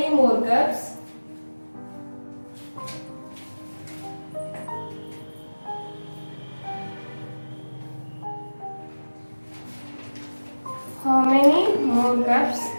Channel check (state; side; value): inverted; both; correlation -1.00